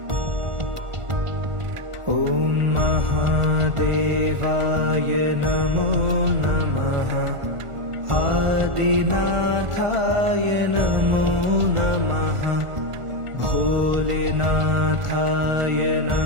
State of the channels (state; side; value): late; left; 1.4 ms